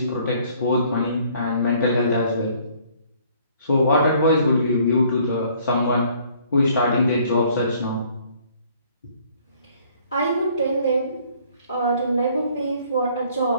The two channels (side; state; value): both; inverted; correlation -0.60